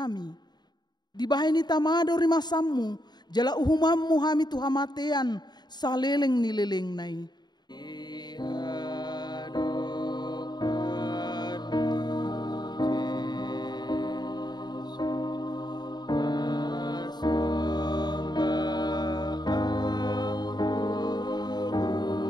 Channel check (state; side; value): late; right; 0.20 ms